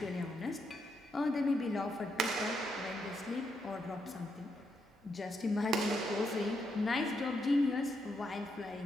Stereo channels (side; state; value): both; normal; correlation 0.80